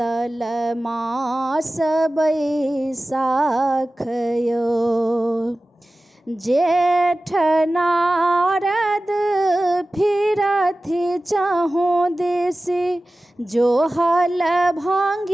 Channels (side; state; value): both; normal; correlation 0.96